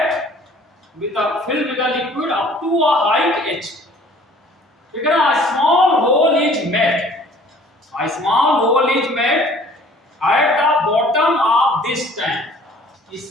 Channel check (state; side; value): normal; both; correlation 0.53